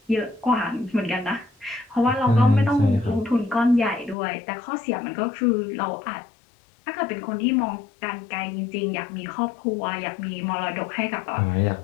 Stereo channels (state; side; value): drops out; right; at 4.2 s